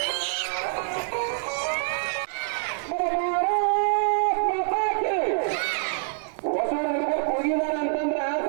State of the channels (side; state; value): left; silent; digital silence